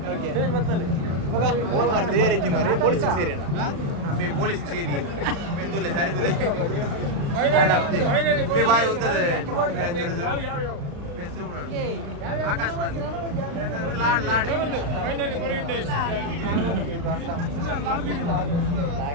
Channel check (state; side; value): late; left; 35 ms